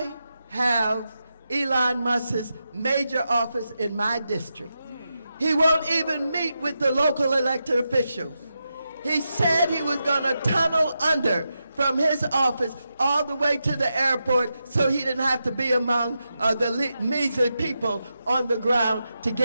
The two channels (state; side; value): inverted; both; correlation -0.88